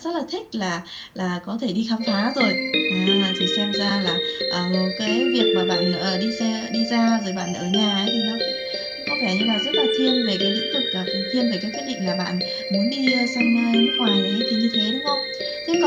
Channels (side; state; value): both; identical; correlation 1.00